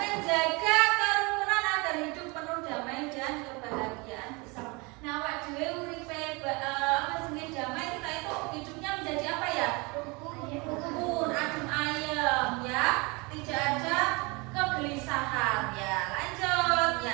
kerukunan agar hidup penuh damai dan kebahagiaan bersama. Nah, awak dhewe uripe jenenge damai, kita itu hidupnya menjadi apa ya? Rukun, adem ayem ya, tidak ada kegelisahan ya. Lanjut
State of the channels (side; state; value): left; quieter; 27.5 dB